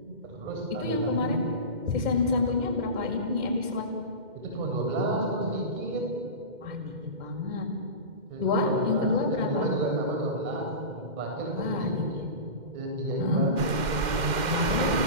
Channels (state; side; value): late; left; 2.1 ms